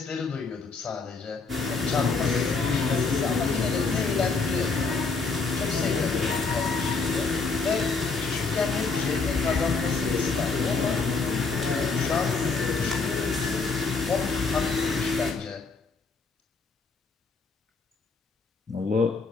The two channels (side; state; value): right; quieter; 4.4 dB